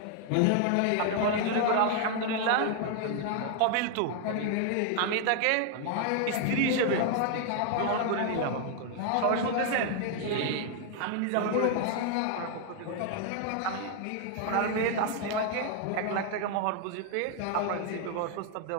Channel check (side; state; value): both; different; correlation 0.00